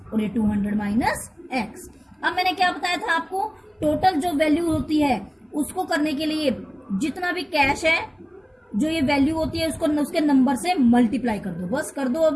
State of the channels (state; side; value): identical; both; correlation 1.00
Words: और ये 200 माइनस x। अब मैंने क्या बताया था आपको, टोटल जो वैल्यू होती है उसको करने के लिए जितना भी कैश है, जो ये वैल्यू होती है उसको उसके नंबर से मल्टीप्लाई कर दो, बस कर दो।